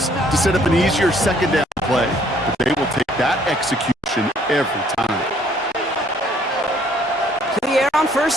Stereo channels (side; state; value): both; normal; correlation 0.62